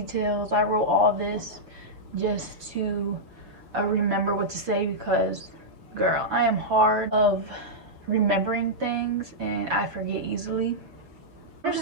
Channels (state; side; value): late; left; 7.2 ms